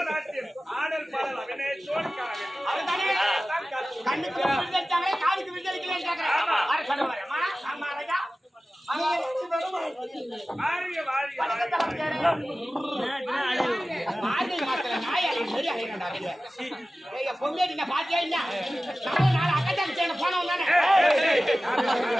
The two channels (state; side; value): normal; both; correlation 0.96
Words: காலுக்கு விடுதலைக்கு பொங்கேட்டி பாத்தியா இல்ல நாலு அக்கட்டாங்க சேர்ந்து போனவன் தானே